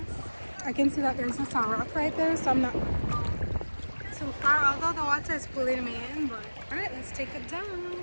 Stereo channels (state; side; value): inverted; both; correlation -1.00